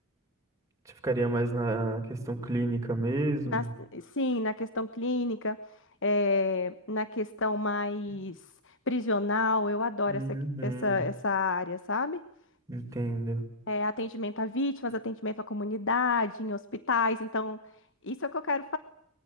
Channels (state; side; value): normal; both; correlation -0.06